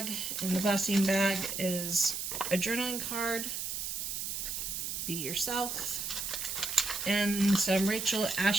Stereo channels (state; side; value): noise; right; hiss, 3 dB below the sound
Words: In the glassine bag is a journaling card. Be yourself. And some Rachel